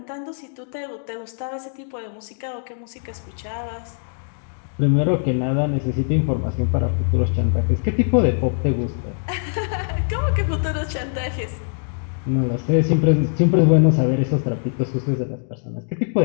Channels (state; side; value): silent; right; digital silence